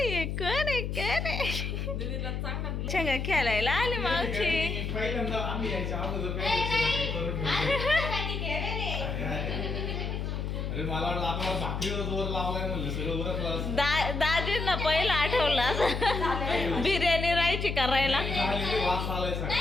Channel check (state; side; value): noise; left; hum, 3 dB below the sound